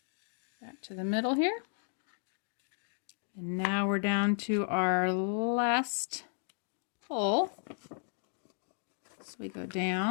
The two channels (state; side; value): silent; right; digital silence